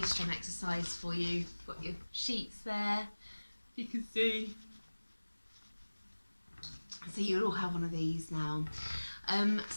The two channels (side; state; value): both; inverted; correlation -1.00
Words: drum exercise for you. Got your sheets there, you can see. So you'll all have one of these now.